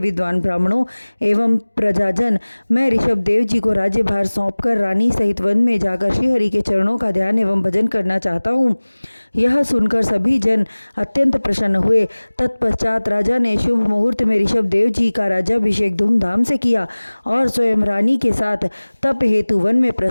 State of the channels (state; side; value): inverted; both; correlation -1.00